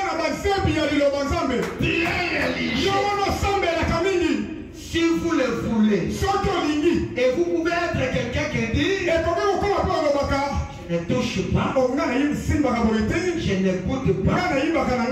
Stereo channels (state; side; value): identical; both; correlation 1.00